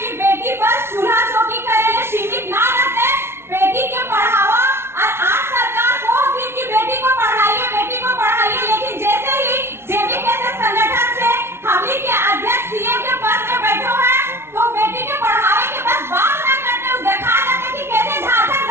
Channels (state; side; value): late; left; 0.12 ms